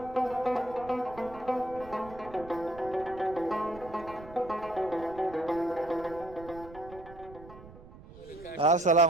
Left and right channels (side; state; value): right; noise; rumble, 18 dB below the sound